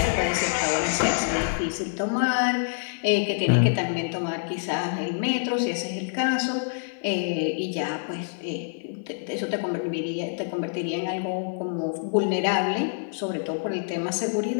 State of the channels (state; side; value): silent; right; 55 dB below the other